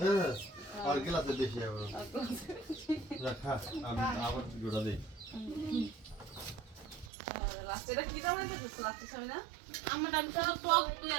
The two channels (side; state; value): left; drops out; at 7.1 s